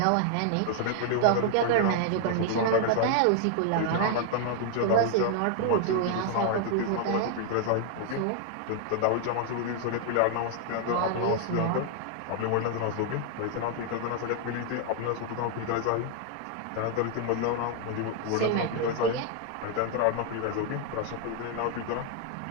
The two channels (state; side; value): different; both; correlation 0.00